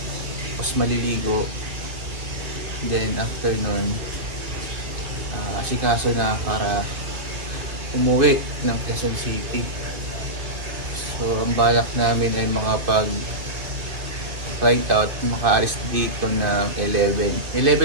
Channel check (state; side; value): late; left; 2.5 ms